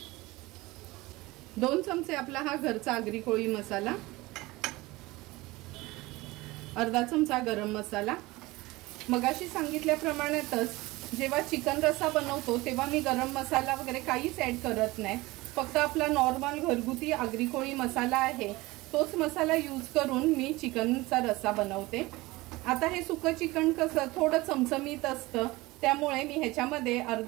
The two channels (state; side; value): quieter; left; 20.8 dB